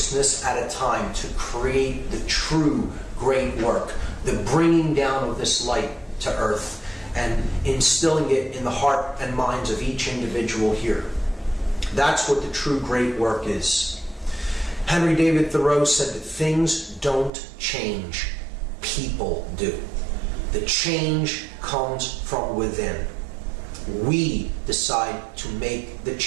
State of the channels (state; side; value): drops out; left; at 17.3 s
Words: at a time, to create the true great work, the bringing down of this light to earth and instilling it in the heart and minds of each individual here. That's what the true great work is. Henry David Thoreau said that things don't change, people do. The change comes from within. We decide to make the